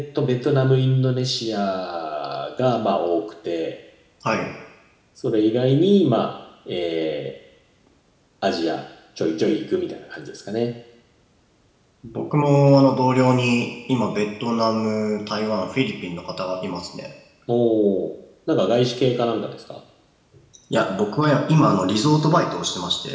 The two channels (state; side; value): identical; both; correlation 1.00